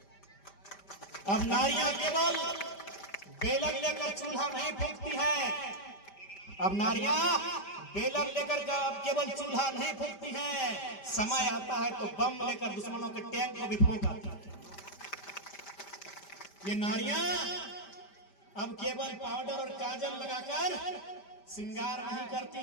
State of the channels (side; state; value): right; late; 5.1 ms